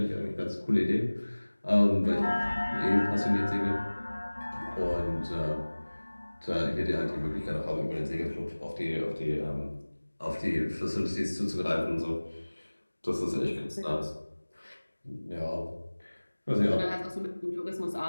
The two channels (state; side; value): inverted; both; correlation -1.00